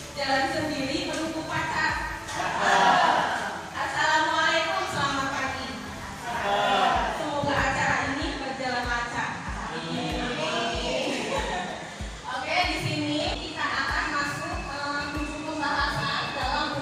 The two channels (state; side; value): identical; both; correlation 1.00